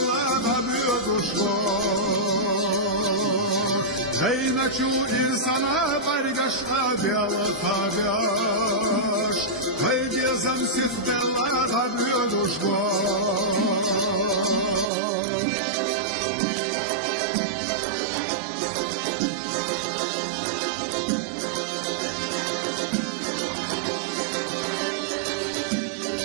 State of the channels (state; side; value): drops out; left; at 14.9 s